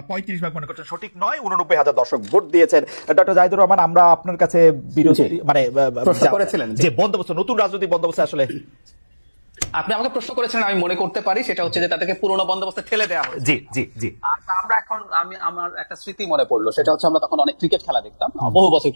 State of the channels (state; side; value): inverted; both; correlation -1.00